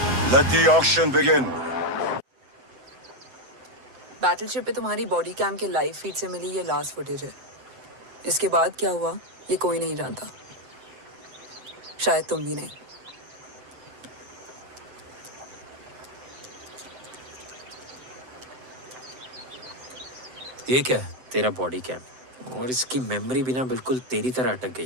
Let the auction begin. Battleship पे तुम्हारी बॉडी कैम के लाइव फीड से मिली ये लास्ट फुटेज है। इसके बाद क्या हुआ ये कोई नहीं जानता, शायद तुम भी नहीं। ये क्या है? तेरा बॉडी कैम, और इसकी मेमोरी भी ना बिल्कुल तेरी तरह अटक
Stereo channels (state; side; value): late; left; 7.8 ms